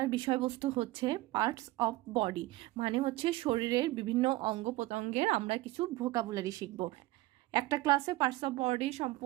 বিষয়বস্তু হচ্ছে পার্টস অফ বডি, মানে হচ্ছে শরীরের বিভিন্ন অঙ্গ প্রত্যঙ্গের আমরা কিছু ভোকাবুলারি শিখব। একটা ক্লাসে পার্টস অফ বডি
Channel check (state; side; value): quieter; left; 18.4 dB